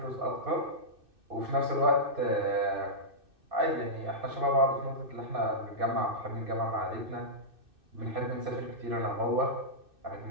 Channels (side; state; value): left; late; 2.6 ms